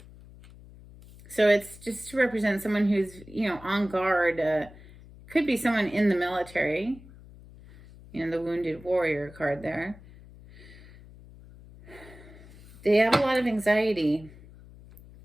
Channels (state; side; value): noise; left; hum, 20 dB below the sound